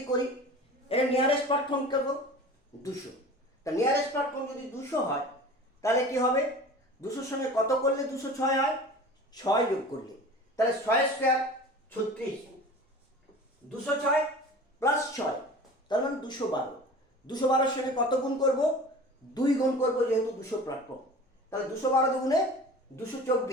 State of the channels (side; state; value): both; normal; correlation 0.39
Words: করি, এর নিয়ারেস্ট প্ল্যাটফর্ম করব 200। তা নিয়ারেস্ট প্ল্যাটফর্ম যদি 200 হয় তাহলে কি হবে? 200 সঙ্গে কত করলে 206 হয়? 6 যোগ করলে, তাহলে 6 স্কোয়ার 36, 206 প্লাস 6 তার মানে 212। 212 সঙ্গে কত গুণ করব? 2 গুণ করব, যেহেতু 200 প্ল্যাটফর্ম, তাহলে 212 দুগুণে